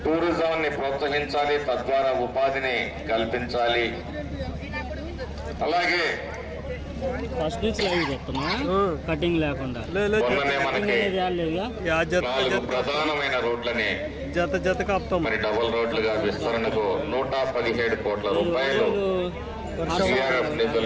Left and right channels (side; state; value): both; identical; correlation 1.00